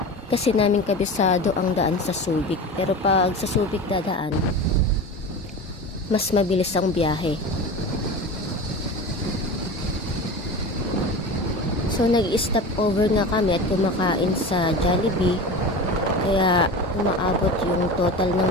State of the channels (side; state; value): both; normal; correlation 0.30